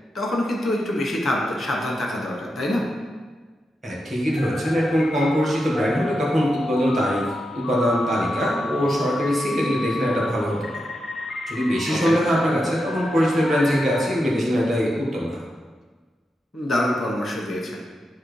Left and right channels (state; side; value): normal; both; correlation 0.87